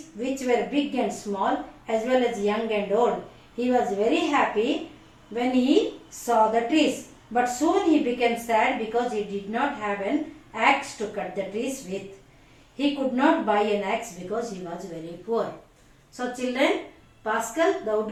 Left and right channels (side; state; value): both; identical; correlation 1.00